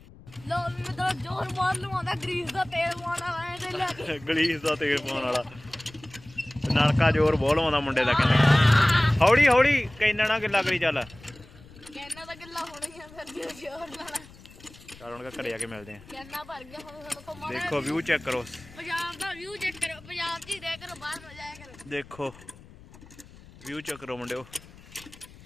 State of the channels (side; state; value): left; noise; rumble, 21 dB below the sound